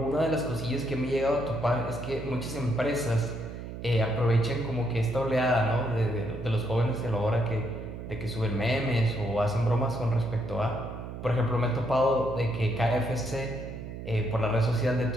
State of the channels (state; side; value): noise; right; hum, 9 dB below the sound